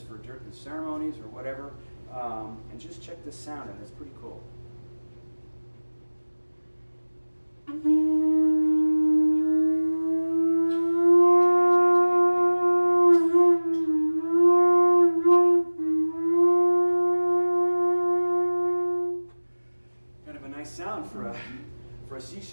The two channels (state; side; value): inverted; both; correlation -1.00